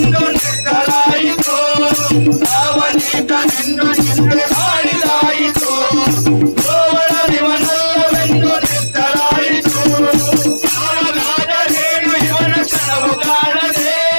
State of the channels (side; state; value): both; inverted; correlation -1.00